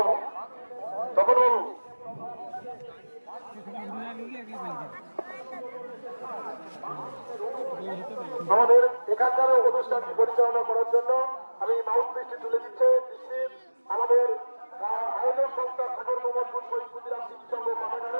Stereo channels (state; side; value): inverted; both; correlation -1.00